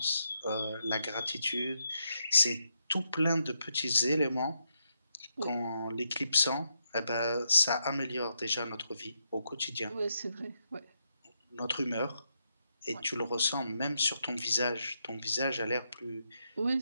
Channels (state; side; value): inverted; both; correlation -0.81